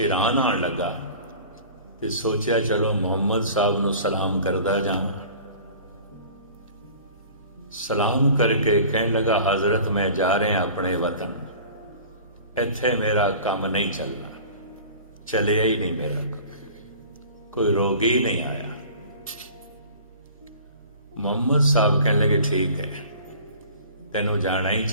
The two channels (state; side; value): inverted; both; correlation -0.44